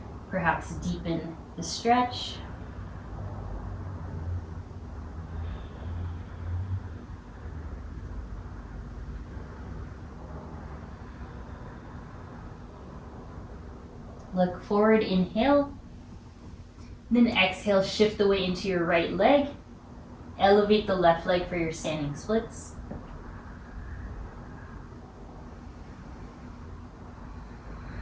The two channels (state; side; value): identical; both; correlation 1.00